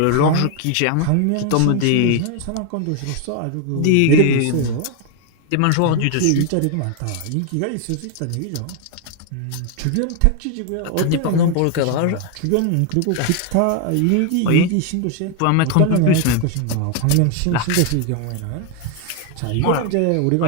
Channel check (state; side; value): different; both; correlation 0.01